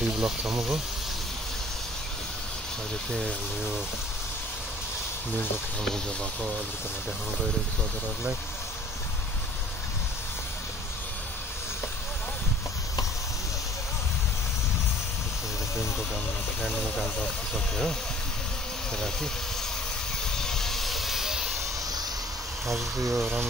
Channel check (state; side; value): normal; both; correlation 0.53